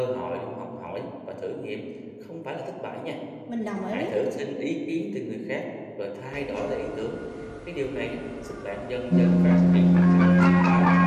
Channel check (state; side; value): identical; both; correlation 1.00